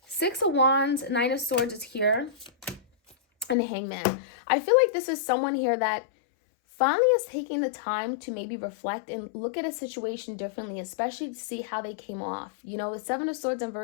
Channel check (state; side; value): drops out; right; at 3.6 s